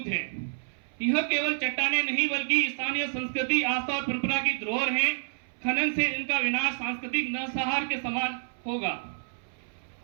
है। यह केवल चट्टाने नहीं बल्कि स्थानीय संस्कृति, आस्था और परंपरा की धरोहर है। खनन से इनका विनाश सांस्कृतिक नरसंहार के समान होगा।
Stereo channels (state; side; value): silent; left; 59 dB below the other